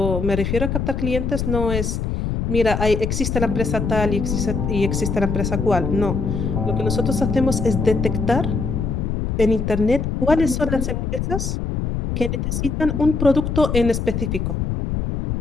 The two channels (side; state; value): left; noise; rumble, 2 dB below the sound